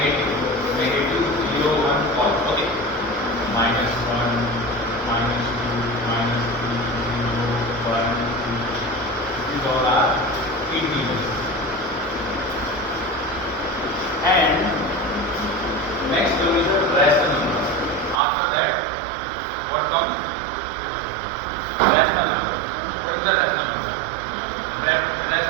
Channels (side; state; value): left; drops out; at 18.2 s